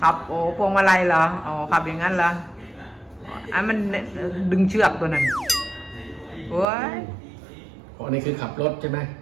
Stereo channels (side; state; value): left; drops out; at 6.7 s